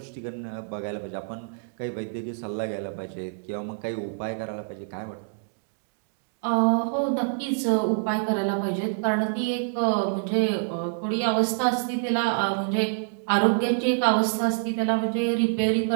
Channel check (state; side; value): silent; left; digital silence